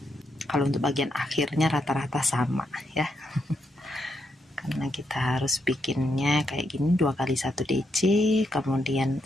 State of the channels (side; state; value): both; normal; correlation 0.81